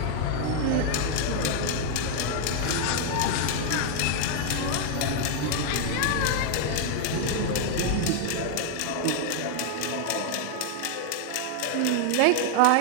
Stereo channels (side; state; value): both; different; correlation 0.00